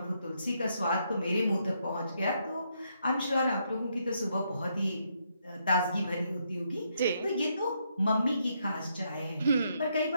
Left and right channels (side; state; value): both; inverted; correlation -0.76